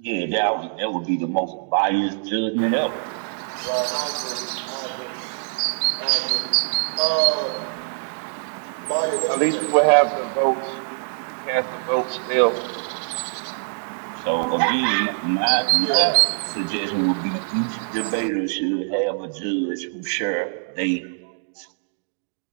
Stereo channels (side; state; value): left; silent; digital silence